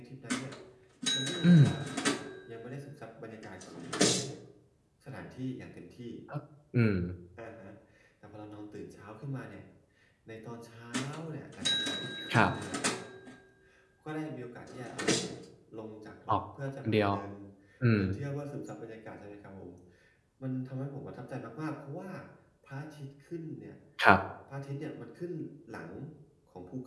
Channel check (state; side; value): identical; both; correlation 1.00